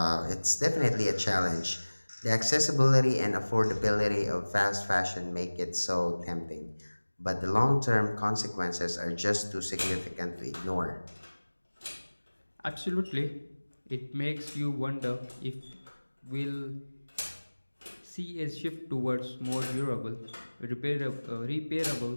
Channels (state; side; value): inverted; both; correlation -1.00